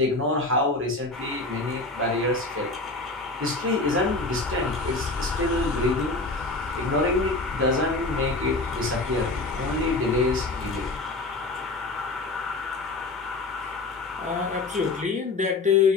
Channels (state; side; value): quieter; right; 3.3 dB